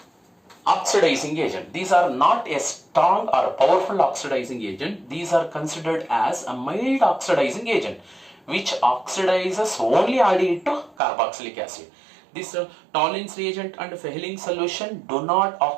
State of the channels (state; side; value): drops out; left; at 11.0 s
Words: oxidizing agent. These are not a strong or a powerful oxidizing agent. These are considered as a mild oxidizing agent which oxidizes only aldehyde to carboxylic acid. This Tollens reagent and Fehling's solution do not